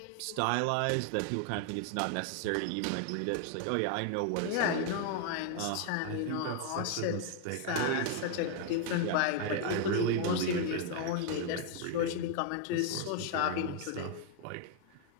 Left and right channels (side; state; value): both; different; correlation 0.00